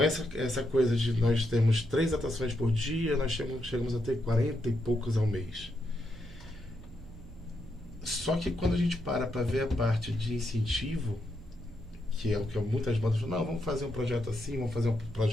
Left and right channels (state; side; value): normal; both; correlation 0.81